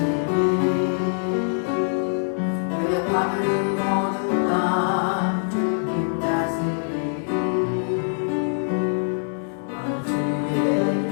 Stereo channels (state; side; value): silent; right; 63 dB below the other